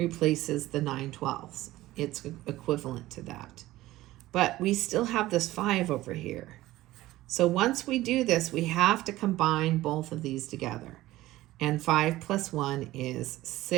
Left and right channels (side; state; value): left; quieter; 16.7 dB